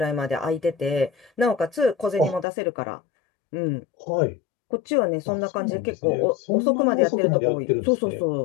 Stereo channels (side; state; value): right; drops out; at 2.5 s